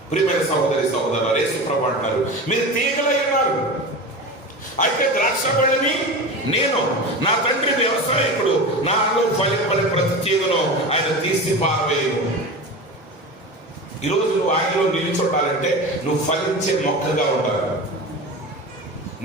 ప్రియమైన సహోదరి సహోదరులు, యేసు ప్రభువు అంటారు, మీరు తీగలై ఉన్నారు, అయితే ద్రాక్షబడిని నేను, నా తండ్రి వ్యవసాయకుడు, నాలో ఫలింపని ప్రతి తీగను ఆయన తీసి పారవేయను. ఈరోజు నువ్వు ఆయనలో నిలిచొట్టాలంటే నువ్వు ఫలించే మొక్కగా ఉండాలి.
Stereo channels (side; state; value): both; normal; correlation 0.29